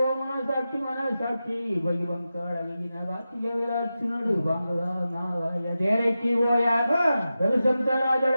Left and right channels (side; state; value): both; inverted; correlation -0.92